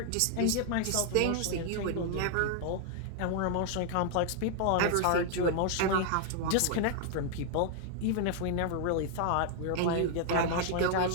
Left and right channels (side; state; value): both; different; correlation 0.00